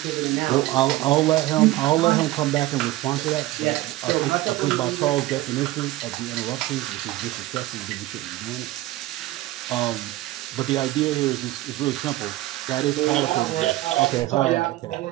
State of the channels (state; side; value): quieter; left; 17.0 dB